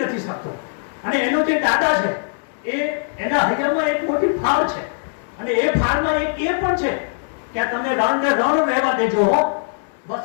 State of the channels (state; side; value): silent; right; digital silence